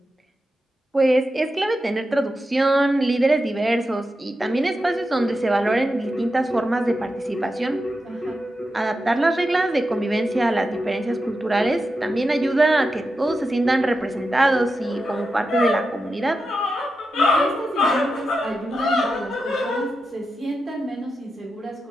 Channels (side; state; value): both; normal; correlation 0.89